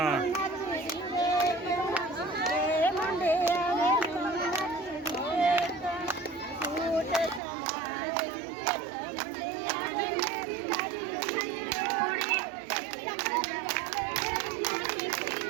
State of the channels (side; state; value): left; drops out; at 7.4 s